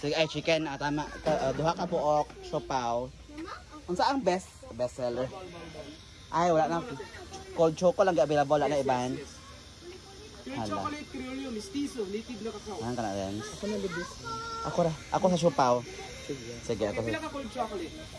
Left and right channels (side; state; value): both; identical; correlation 1.00